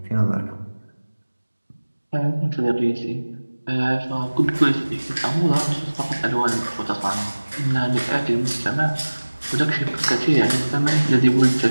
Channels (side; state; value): both; inverted; correlation -1.00